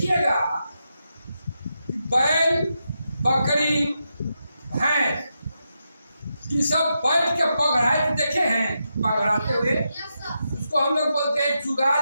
बैल, बकरी, भैंस, ये सब बैठ के पगड़ाते देखे हैं? पगड़ाते हुए उसको हम लोग बोलते हैं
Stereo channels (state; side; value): inverted; both; correlation -0.86